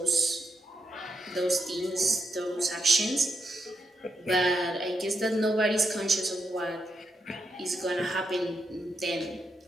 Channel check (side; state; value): both; normal; correlation 0.82